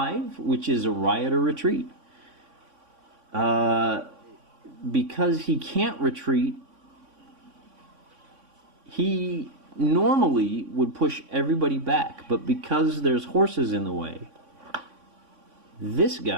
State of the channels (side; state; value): left; late; 3.6 ms